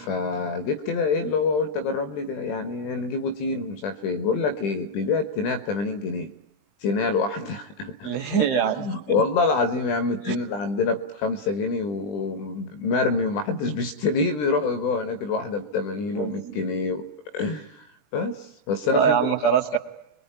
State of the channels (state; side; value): late; right; 20 ms